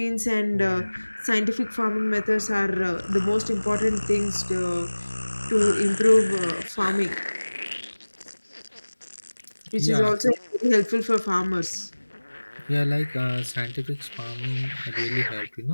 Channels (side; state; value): both; inverted; correlation -1.00